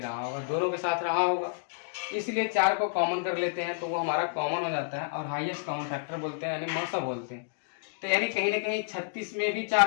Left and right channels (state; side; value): silent; right; digital silence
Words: रहा होगा, दोनों के साथ रहा होगा, इसलिए 4 को कॉमन कर लेते हैं तो वो हमारा कॉमन हो जाता है और हाईएस्ट कॉमन फैक्टर बोलते हैं, यानी मौसा बोलते हैं। तो यानी कहीं ना कहीं 36 में भी